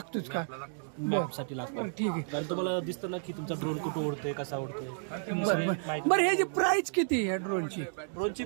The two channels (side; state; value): left; silent; digital silence